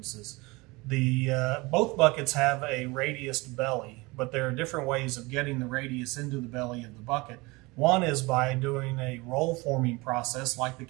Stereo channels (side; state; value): left; quieter; 24.0 dB